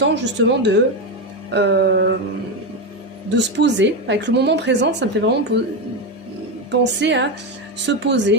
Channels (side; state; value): both; normal; correlation 0.12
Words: justement de se poser. Avec le moment présent, ça me fait vraiment penser à se